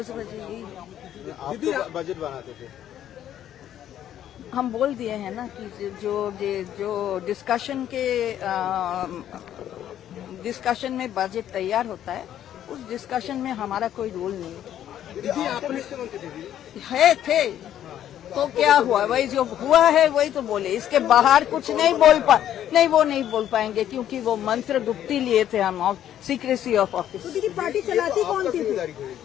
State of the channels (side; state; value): right; quieter; 11.0 dB